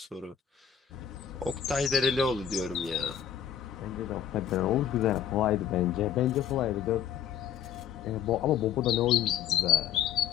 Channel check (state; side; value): quieter; right; 9.0 dB